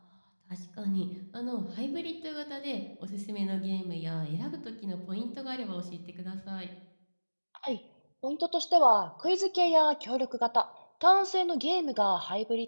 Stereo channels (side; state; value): both; inverted; correlation -1.00